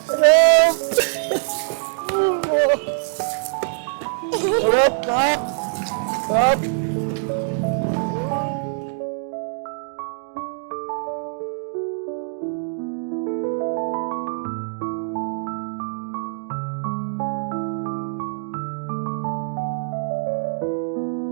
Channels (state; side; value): silent; left; digital silence